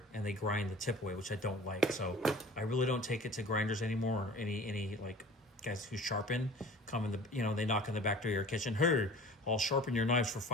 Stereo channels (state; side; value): normal; both; correlation 0.43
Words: and they grind the tip away, which I don't like. So I really don't take it to grinders anymore, or any like guys who sharpen come in the, you know, they knock on the back door of your kitchen. Hey, I'll sharpen your knives for